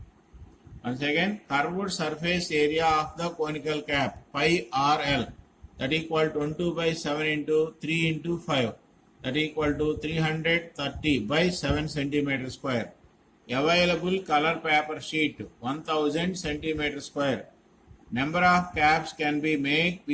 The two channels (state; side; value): identical; both; correlation 1.00